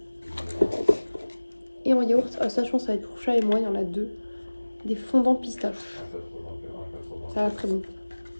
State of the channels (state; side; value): inverted; both; correlation -1.00